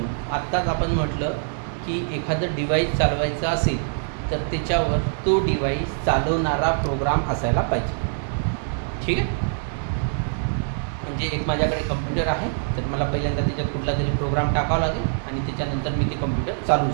आत्ताच आपण म्हटलं की एखादं डिव्हाइस चालवायचं असेल तर त्याच्यावर तो डिव्हाइस चालवणारा प्रोग्राम असायला पाहिजे, ठीक आहे. म्हणजे एक माझ्याकडे कम्प्युटर आहे तर मला पहिल्यांदा त्याच्यात कुठला तरी प्रोग्राम टाकावा लागेल आणि त्याच्यानंतर मी ते कम्प्युटर चालवू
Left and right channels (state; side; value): silent; left; digital silence